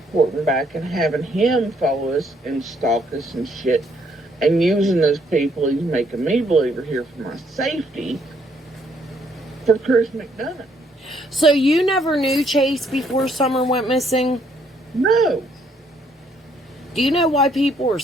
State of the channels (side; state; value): both; normal; correlation 0.69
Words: back and having him follow us and stalk us and shit and using those people he's making me believe are here for my safety for Chris McDonough. So you never knew Chase before Summer went missing? No. Do you know why people are